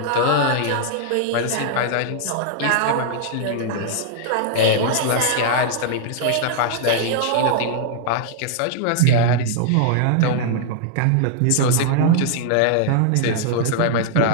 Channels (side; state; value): both; different; correlation -0.01